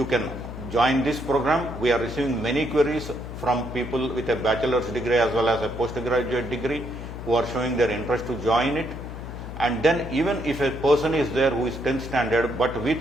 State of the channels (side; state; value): left; noise; hum, 10 dB below the sound